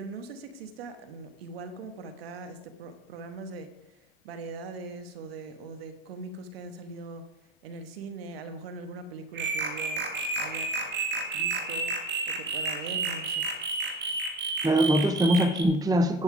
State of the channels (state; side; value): normal; both; correlation 0.43